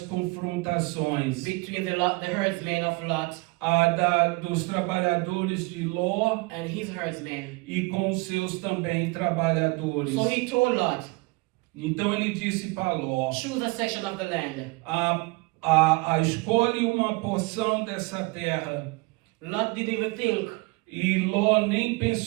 confrontações between the herdsmen of Lot dos trabalhadores de Ló and his herdsmen. e com os seus também trabalhadores. So he told Lot, Então ele disse para Ló: choose a section of the land. escolhe uma porção dessa terra. Lot didn't even think E Ló nem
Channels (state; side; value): quieter; left; 25.3 dB